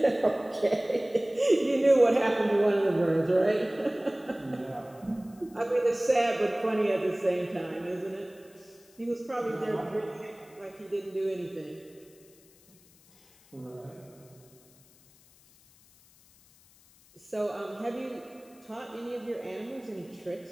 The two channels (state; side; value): noise; left; hiss, 28 dB below the sound